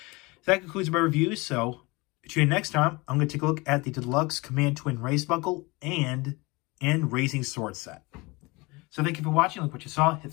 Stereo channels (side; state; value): right; quieter; 24.6 dB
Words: So that concludes my review. So, tune in next time. I'm going to take a look at the Deluxe Command Twin Race Buckle and Raising Sword Set. So, thank you for watching. Like what you saw. Hit